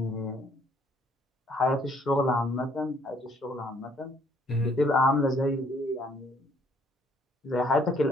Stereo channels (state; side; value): normal; both; correlation 0.64